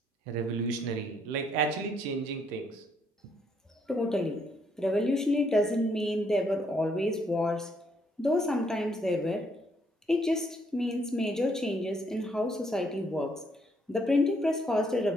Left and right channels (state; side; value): normal; both; correlation 0.71